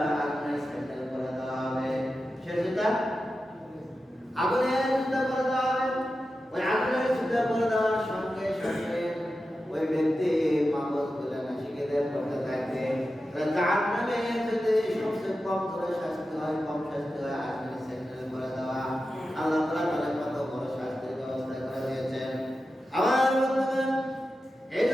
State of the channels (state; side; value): normal; both; correlation 0.92